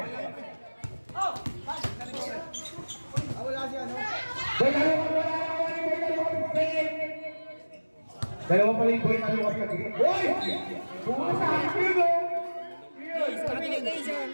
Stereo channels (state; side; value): inverted; both; correlation -1.00